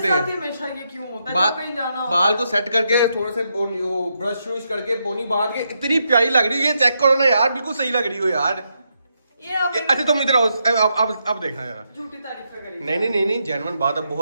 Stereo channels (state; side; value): inverted; both; correlation -0.82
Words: हैं। हमेशा ये क्यों होता है जब कहीं जाना हो? बाल को सेट करके थोड़े से ब्रश व्रश करके पोनी बांध के इतनी प्यारी लग रही है। ये चेक करो ना यार, बिल्कुल सही लग रही हो यार। अच्छा तुम इधर आओ, अब देखना यार। झूठी तारीफ करी। नहीं जेन्युइन बात, अब